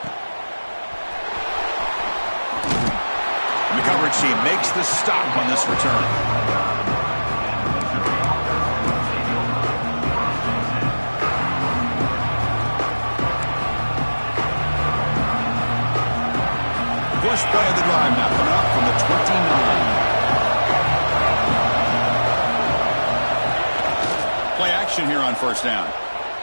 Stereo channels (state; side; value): inverted; both; correlation -1.00